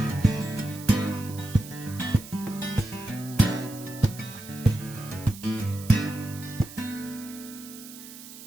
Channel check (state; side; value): noise; right; hiss, 15 dB below the sound